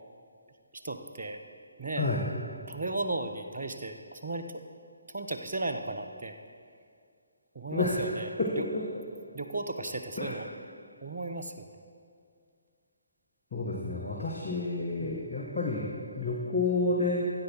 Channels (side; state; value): both; inverted; correlation -0.40